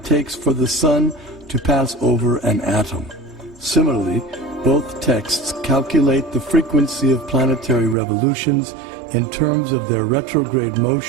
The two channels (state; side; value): drops out; left; at 8.0 s